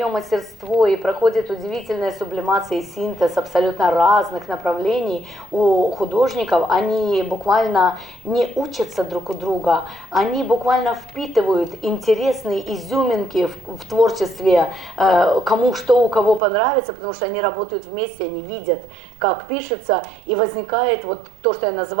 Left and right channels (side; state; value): left; drops out; at 16.4 s